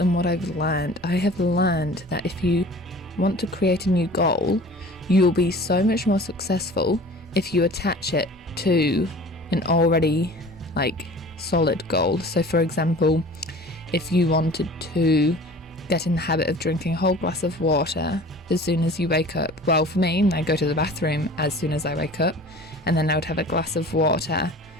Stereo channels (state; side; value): normal; both; correlation 0.43